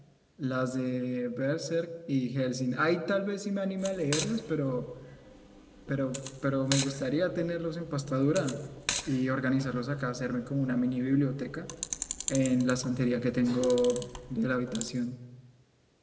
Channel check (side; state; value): both; identical; correlation 1.00